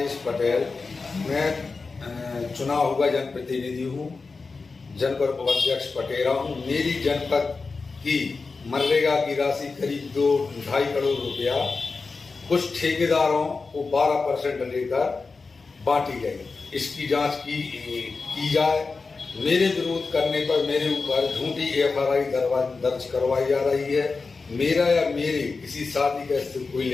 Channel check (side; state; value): right; quieter; 4.3 dB